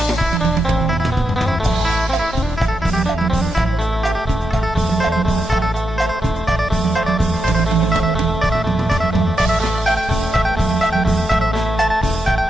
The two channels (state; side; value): normal; both; correlation 0.85